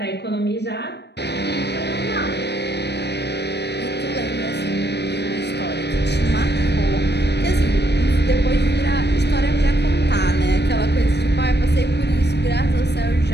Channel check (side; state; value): right; late; 0.49 ms